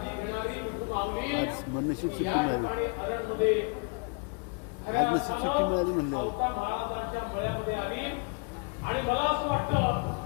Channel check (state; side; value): quieter; right; 34.6 dB